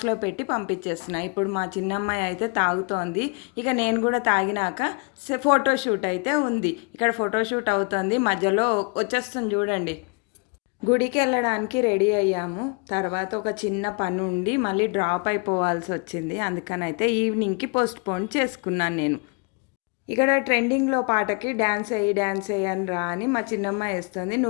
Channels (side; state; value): right; quieter; 34.9 dB